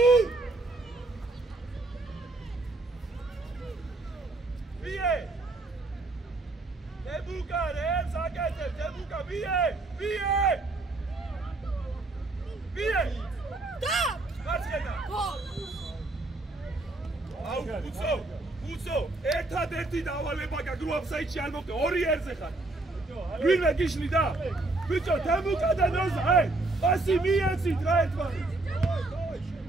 ვიე! დებუკა რებს აკეთე, დებუკა ვიე! და! გაჩენა. აუ, უცო, ერთადერთი დავალება გაქვს რო აფსაიდში არ მოკე, 2 ერზე ხარ. ვინმე გიშლი და? ბიჭო, თემუკა და ნოზა, პასი მიეცით რა ერთმანეთს.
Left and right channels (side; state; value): left; quieter; 3.0 dB